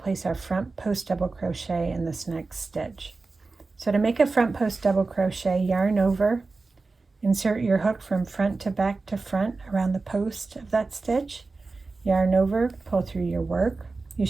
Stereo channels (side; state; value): left; quieter; 3.8 dB